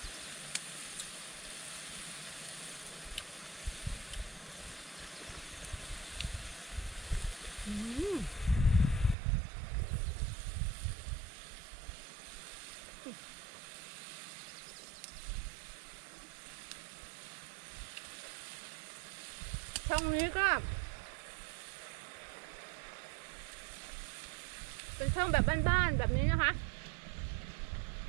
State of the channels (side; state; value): left; drops out; at 9.2 s